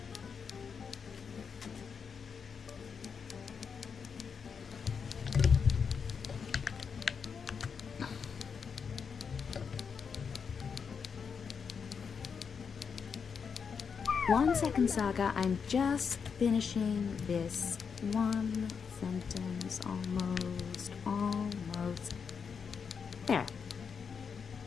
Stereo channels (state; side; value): quieter; right; 6.2 dB